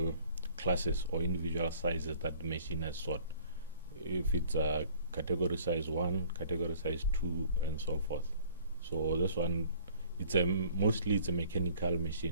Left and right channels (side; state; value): both; inverted; correlation -0.54